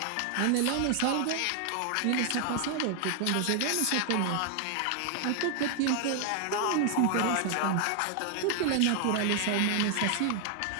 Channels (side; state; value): both; different; correlation 0.00